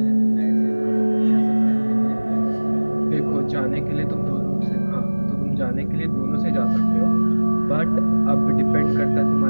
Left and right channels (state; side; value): inverted; both; correlation -1.00